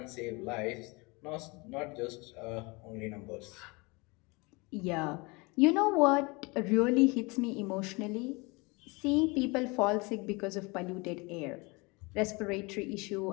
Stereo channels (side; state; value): right; quieter; 26.9 dB